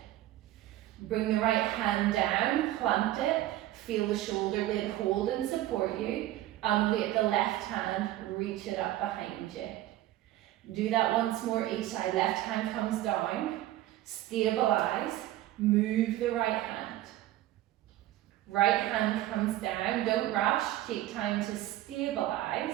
Bring the right hand down, plant it. Feel the shoulder blade hold and support you. Ungate the left hand, reach it up behind you. Do that once more each side. Left hand comes down, stabilize, move the right hand. Right hand comes down, don't rush, take time to stabilize,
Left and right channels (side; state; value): left; quieter; 14.8 dB